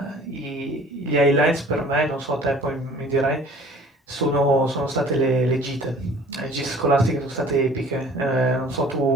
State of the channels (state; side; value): normal; both; correlation 0.49